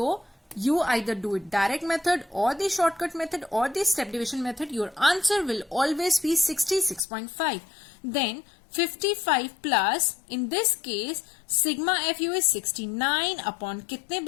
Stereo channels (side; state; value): right; drops out; at 7.1 s